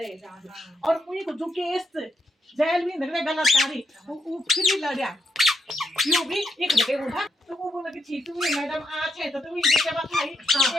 जाना और कोई को जो केस जेल में निकले गलतकारी वो फिर भी लड़ा यो भी एक जगह बोला तो वो बोला कि ठीक है मैडम आज है तो तुम ये क्या बात है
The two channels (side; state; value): both; normal; correlation 0.81